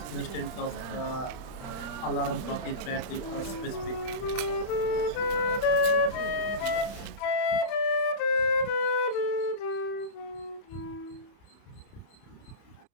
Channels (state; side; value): late; right; 30 ms